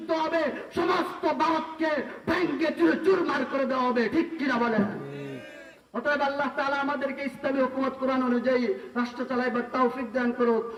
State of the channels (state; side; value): identical; both; correlation 1.00